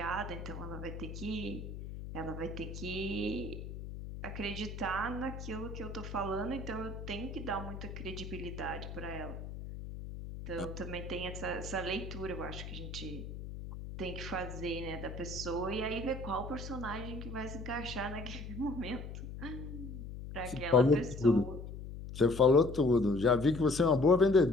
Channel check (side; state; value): left; noise; hum, 9 dB below the sound